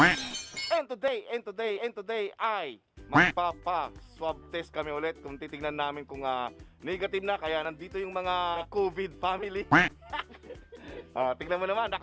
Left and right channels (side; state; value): both; identical; correlation 1.00